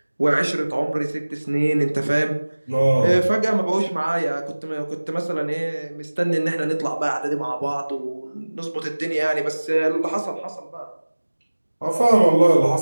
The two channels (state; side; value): inverted; both; correlation -1.00